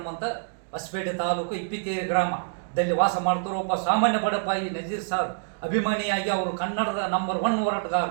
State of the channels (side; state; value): left; silent; digital silence